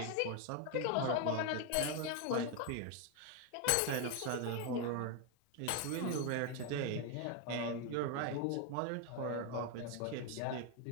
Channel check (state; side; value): different; both; correlation 0.01